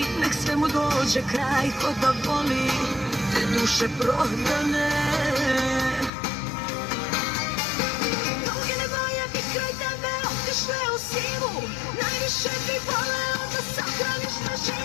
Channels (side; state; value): right; drops out; at 6.1 s